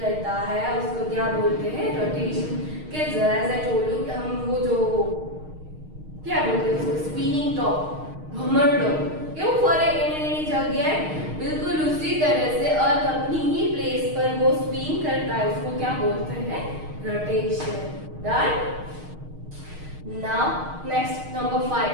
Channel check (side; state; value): left; late; 6.5 ms